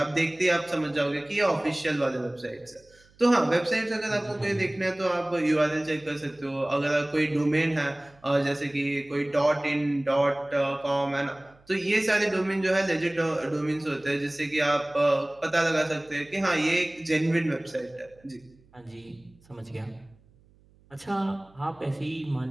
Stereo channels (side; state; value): right; noise; hum, 30 dB below the sound